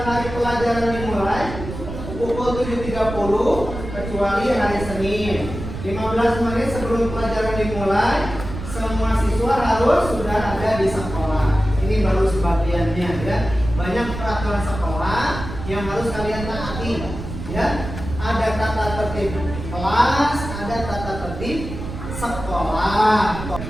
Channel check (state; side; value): noise; right; rumble, 9 dB below the sound